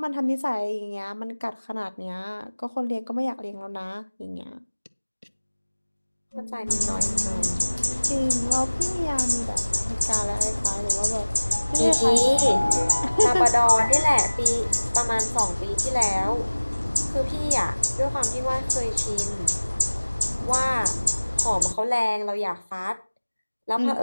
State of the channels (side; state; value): both; inverted; correlation -1.00